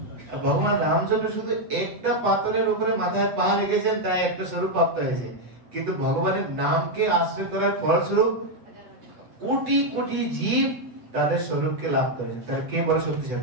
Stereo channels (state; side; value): late; left; 8.2 ms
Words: ভগবান রামচন্দ্র শুধু একটা পাথরের উপরে মাথায় পা রেখেছেন, তাই একটা স্বরূপ প্রাপ্ত হয়েছে, কিন্তু ভগবানের নামকে আশ্রয় করার ফলস্বরূপ কোটি কোটি জীব তাদের স্বরূপকে লাভ করেছেন। তাহলে কে বড়